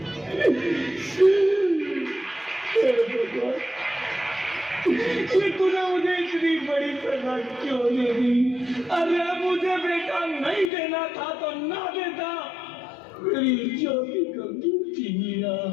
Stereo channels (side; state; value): right; drops out; at 10.7 s